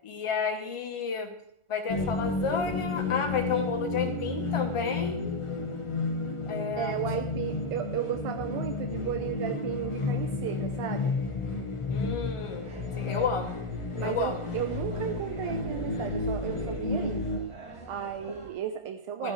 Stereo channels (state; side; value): late; right; 1.4 ms